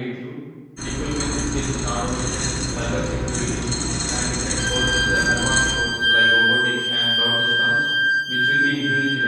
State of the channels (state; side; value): identical; both; correlation 1.00